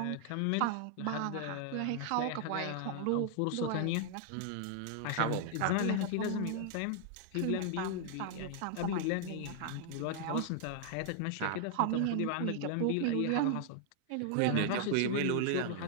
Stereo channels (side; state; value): both; different; correlation 0.00